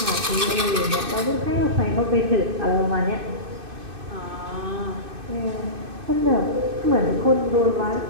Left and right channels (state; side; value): late; left; 2.6 ms